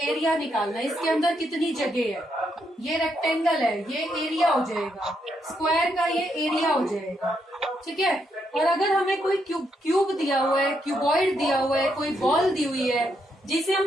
एरिया निकालना है, इसके अंदर कितनी जगह है। ये रेक्टेंगल है, ये एरिया हो जाएगा। स्क्वायर का ये एरिया हो जाएगा। ठीक है, और अगर हमें कोई क्यूब दिया हुआ है, क्यूबॉइड दिया हुआ है, कोई बॉल दी हुई है, जिसे हम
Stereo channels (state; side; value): normal; both; correlation 0.78